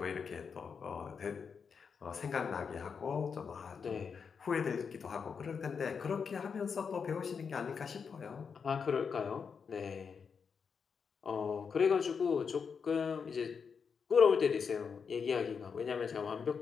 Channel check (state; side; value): quieter; right; 6.1 dB